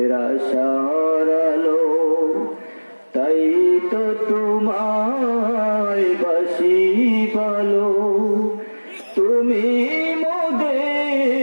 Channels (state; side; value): inverted; both; correlation -1.00